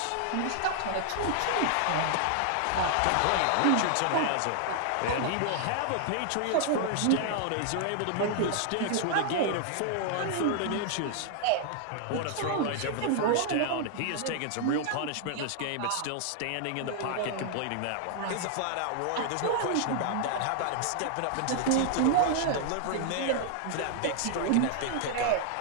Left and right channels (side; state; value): both; different; correlation 0.00